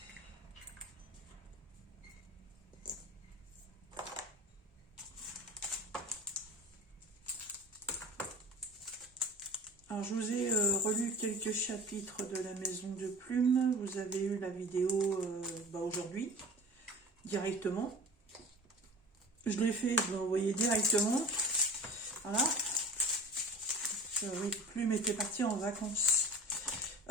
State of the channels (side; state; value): both; normal; correlation 0.37